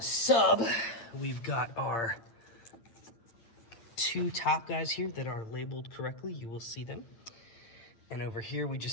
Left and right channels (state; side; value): late; right; 8.7 ms